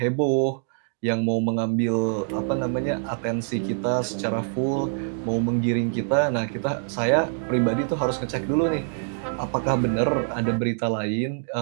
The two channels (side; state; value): left; silent; digital silence